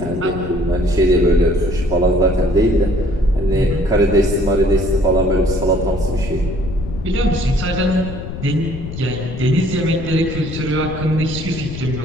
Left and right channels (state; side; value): noise; left; rumble, 9 dB below the sound